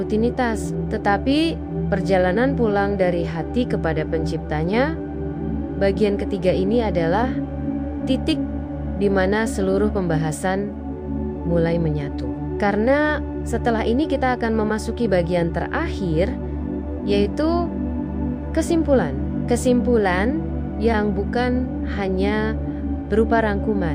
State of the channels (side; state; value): both; identical; correlation 1.00